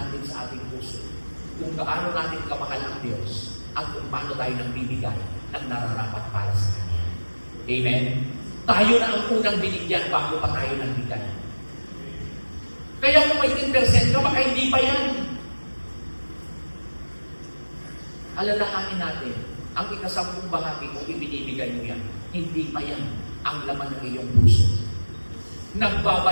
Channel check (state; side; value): inverted; both; correlation -1.00